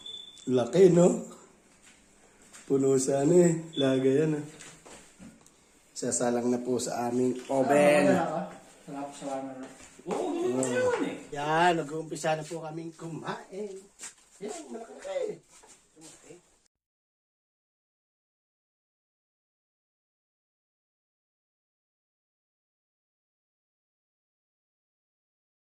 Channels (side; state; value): both; identical; correlation 1.00